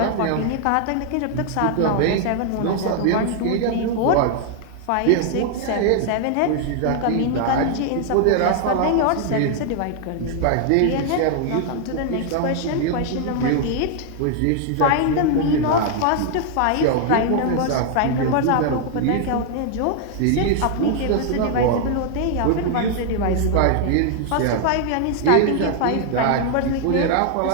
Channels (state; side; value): different; both; correlation 0.00